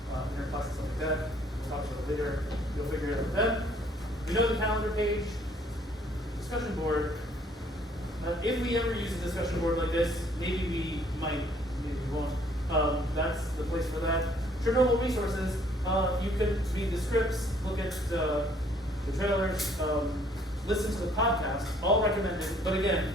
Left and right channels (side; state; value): both; normal; correlation 0.62